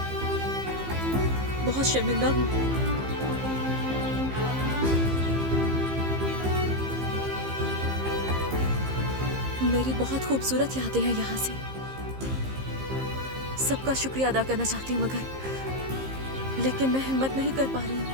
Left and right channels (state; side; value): late; left; 15 ms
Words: बहुत शर्मिंदा हूं। मेरी बहुत खूबसूरत यादें हैं यहाँ से। सबका शुक्रिया अदा करना चाहती हूँ, मगर लेकिन मैं हिम्मत नहीं कर पा रही हूँ।